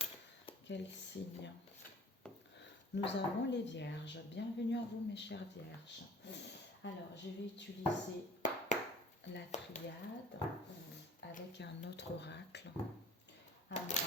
quel signe. Nous avons les vierges. Bienvenue à vous mes chères vierges. Alors, je vais utiliser la triade avec un autre oracle. Alors,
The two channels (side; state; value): both; normal; correlation 0.47